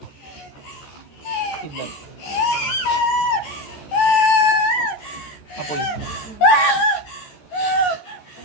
Si Bat. Apoy.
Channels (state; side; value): late; right; 14 ms